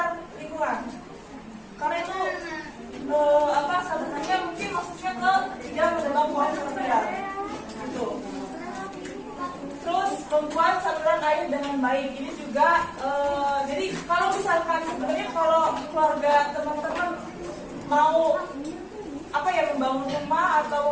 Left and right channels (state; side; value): identical; both; correlation 1.00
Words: lingkungan. Karena itu sebenarnya mungkin maksudnya ke tidak menebang pohon secara liar. Gitu. Terus membuat saluran air dengan baik. Ini juga jadi kalau misalkan sebenarnya kalau keluarga teman-teman mau membangun rumah